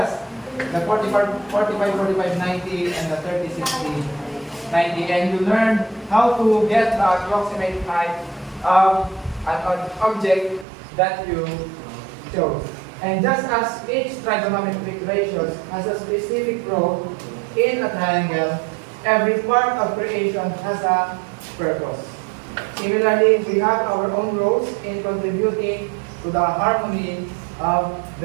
the 45, 45, 90, and the 30, 60, 90. And you learned how to get the approximate height of an object that you chose. And just as each trigonometric ratio has a specific role in a triangle, every part of creation has a purpose. Similarly, we have our own roles in contributing to the harmony of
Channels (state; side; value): drops out; left; at 10.7 s